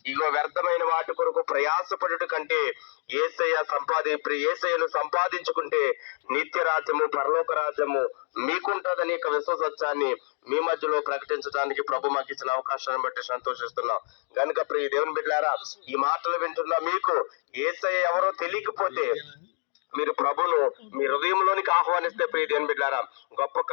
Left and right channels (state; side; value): silent; right; 56 dB below the other